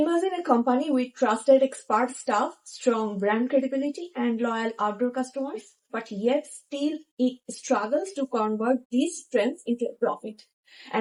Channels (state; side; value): identical; both; correlation 1.00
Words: a company with trusted expert staff, strong brand credibility, and loyal outdoor customers, but yet still it struggles to convert these strengths into a profit.